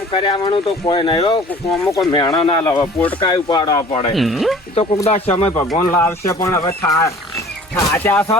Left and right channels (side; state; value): both; normal; correlation 0.48